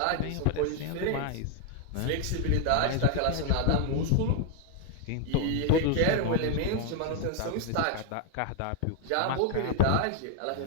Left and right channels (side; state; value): both; different; correlation 0.00